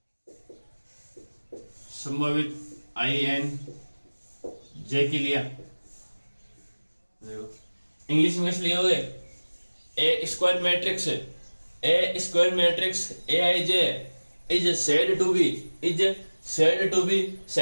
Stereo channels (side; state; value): both; inverted; correlation -1.00